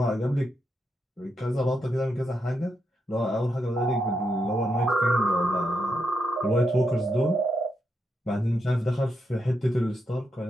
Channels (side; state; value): both; normal; correlation 0.82